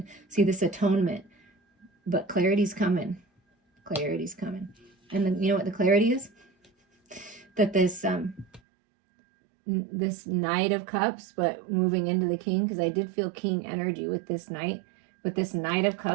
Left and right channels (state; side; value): drops out; left; at 8.6 s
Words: see this atonement, but clarity's coming. Clarity's coming. And then, you know what the clarity is? That this Knight of Cups, but moving into the King, because I did feel King energy with this Knight. But this Knight of